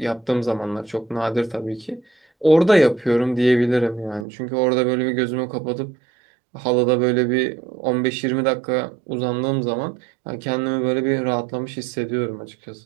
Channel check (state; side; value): drops out; left; at 4.2 s